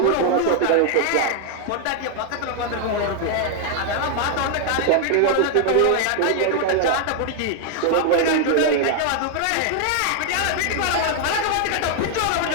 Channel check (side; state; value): both; different; correlation 0.00